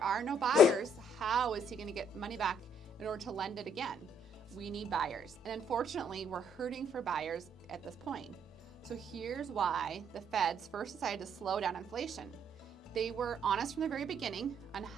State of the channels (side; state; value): both; normal; correlation 0.67